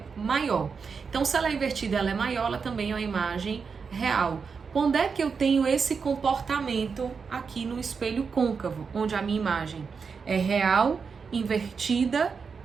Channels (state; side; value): quieter; left; 5.5 dB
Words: maior. Então, se ela é invertida, ela é maior, ela também é uma imagem real. Quando é que eu tenho esse comportamento aqui no espelho côncavo, onde a minha imagem é real, invertida